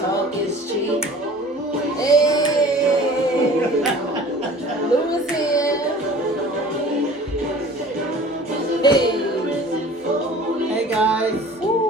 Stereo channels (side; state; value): both; normal; correlation 0.45